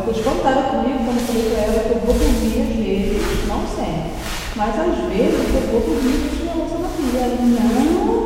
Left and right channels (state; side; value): identical; both; correlation 1.00